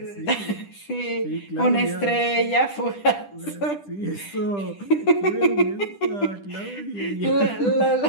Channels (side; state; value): right; late; 10 ms